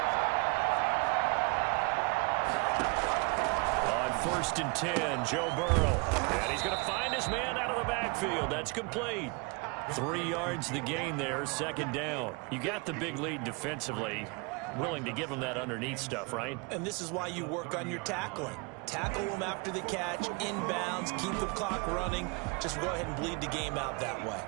On 1st and 10, Joe Burrow. And he's going to find his man out of the backfield. That's complete. 3 yards the gain there, 2nd down. You got the big lead defensively. Willing to give him that underneath stuff, right? And this is why you work on your tackling. Tackle them after the catch, inbounds, keep the clock running. Just go ahead and bleed the game out that way.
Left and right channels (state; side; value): quieter; left; 31.1 dB